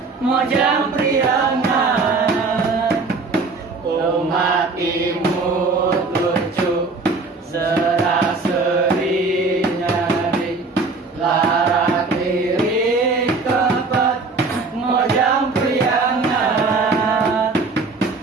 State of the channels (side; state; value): left; quieter; 3.9 dB